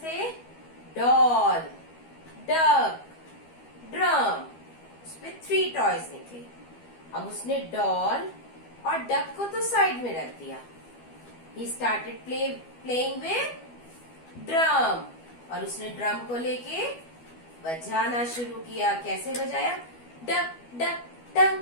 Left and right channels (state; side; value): late; right; 12 ms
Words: थे? Doll, duck, drum. उसपे 3 टॉयज निकले. अब उसने डॉल और डक को तो साइड में रख दिया. He started playing with drum. और उसने ड्रम को लेके बजाना शुरू किया. कैसे बजाया? Duck duck